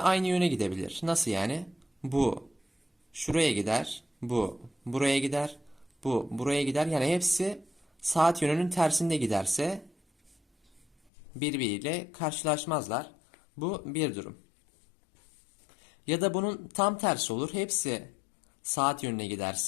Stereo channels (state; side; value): drops out; right; at 11.1 s